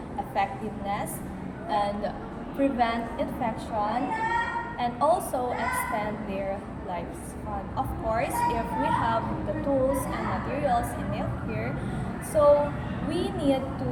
effectiveness and prevent infection and also extend their lifespan. Of course, if we have the tools and materials in nail care, so we need to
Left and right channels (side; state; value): both; identical; correlation 1.00